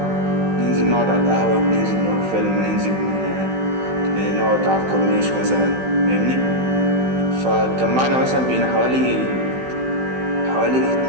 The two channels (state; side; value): late; left; 16 ms